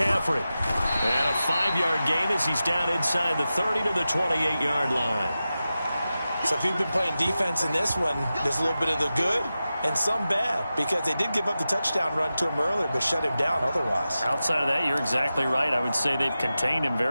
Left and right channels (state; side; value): inverted; both; correlation -0.93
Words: And a 5-yard gain as he's down inside the 30 to the 28-yard line. So if you've been playing defense in this one, there's a little bit of the good and some bad, because they did give up the touchdown run to him earlier, but shut him down otherwise. Outside of that, you're exactly right. I would say they've contained him